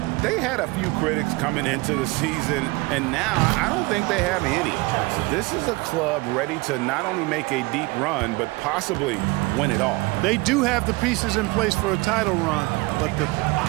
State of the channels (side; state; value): left; quieter; 23.6 dB